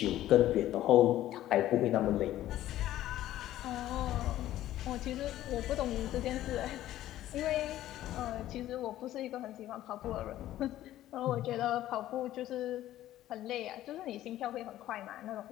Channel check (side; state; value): right; quieter; 13.7 dB